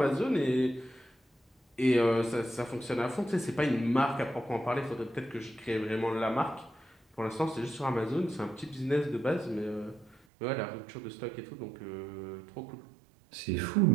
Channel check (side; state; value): left; drops out; at 10.2 s